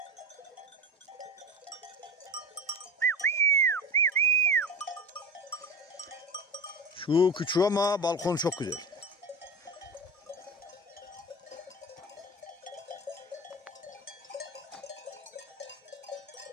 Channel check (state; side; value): normal; both; correlation 0.27